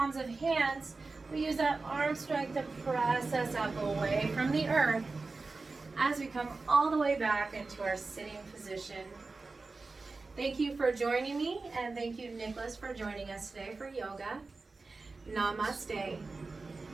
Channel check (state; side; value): quieter; left; 3.8 dB